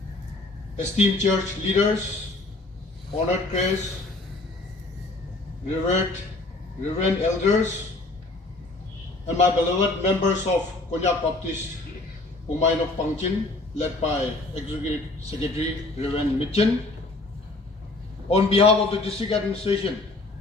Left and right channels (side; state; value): right; quieter; 3.0 dB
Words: esteemed church leaders, honored guests, Reverend elders, and my beloved members of Konyak Baptist Umainok Pangchin, led by Executive Secretary Reverend Mitchen. On behalf of the district administration,